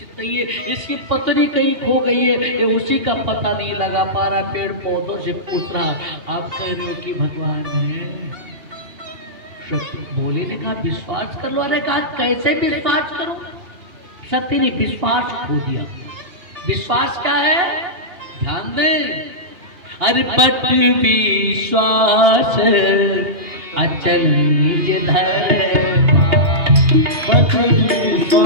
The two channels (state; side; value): late; left; 2.8 ms